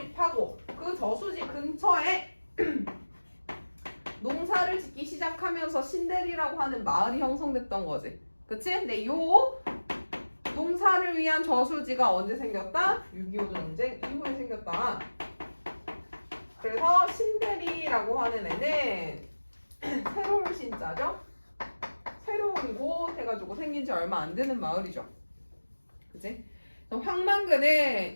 그 저수지 근처에 농사를 짓기 시작하면서 신대리라고 하는 마을이 형성됐던 거지. 그치? 근데 요 농사를 위한 저수지가 언제 생겼다? 6.25 전쟁 이후에 생겼다. 그래서 신대리라고 하는 애는 새로운 신자죠? 새로운 곳 해가지고 생긴 지 얼마 안 되는 마을이죠. 그치?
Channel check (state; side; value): inverted; both; correlation -1.00